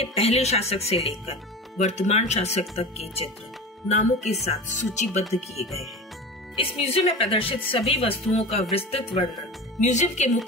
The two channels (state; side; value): normal; both; correlation 0.32